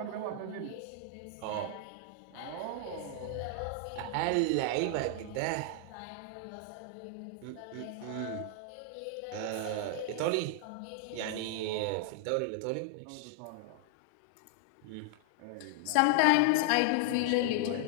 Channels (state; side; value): different; both; correlation 0.00